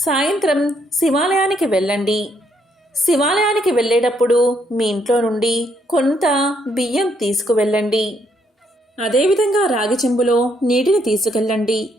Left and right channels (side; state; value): both; normal; correlation 0.72